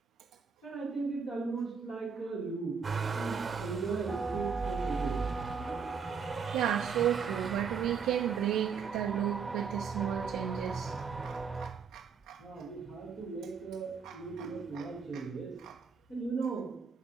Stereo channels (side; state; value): left; quieter; 6.0 dB